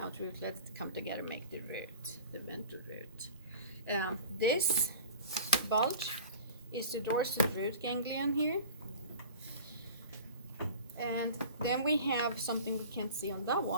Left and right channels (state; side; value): inverted; both; correlation -0.41